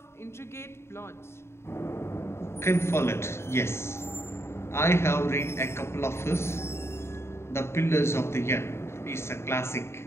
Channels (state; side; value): late; right; 0.12 ms